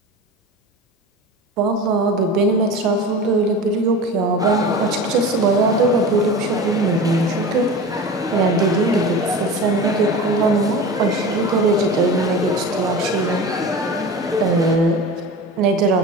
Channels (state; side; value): normal; both; correlation 0.33